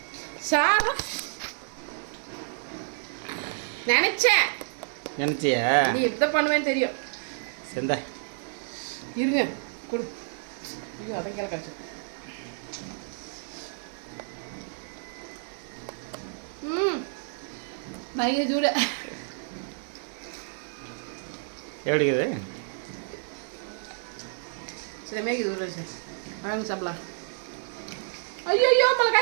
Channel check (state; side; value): silent; left; digital silence